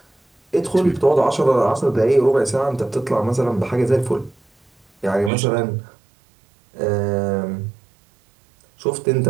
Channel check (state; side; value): drops out; left; at 5.3 s